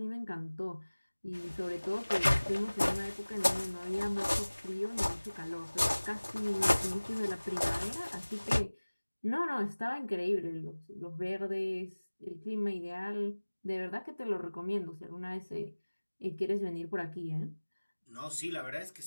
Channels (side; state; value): both; inverted; correlation -1.00